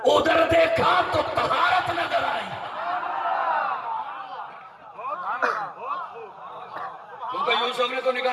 ادھر دیکھا تو طہارت نظر آئی، کیونکہ یوسف نے تو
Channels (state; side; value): identical; both; correlation 1.00